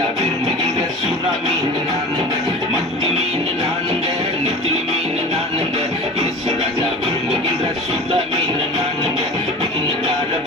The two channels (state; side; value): normal; both; correlation 0.36